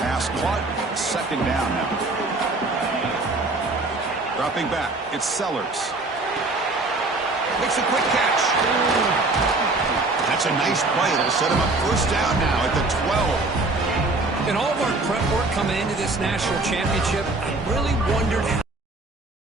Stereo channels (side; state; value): left; quieter; 3.1 dB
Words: Pass caught, second down now. Dropping back, it's Sellers. Makes a quick catch. That's a nice play. It'll set him up first down now at the 12. In all of our prep work coming into this national championship, I really wondered how